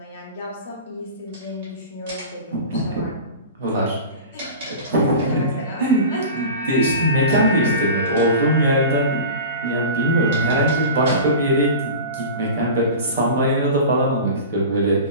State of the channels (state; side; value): inverted; both; correlation -0.33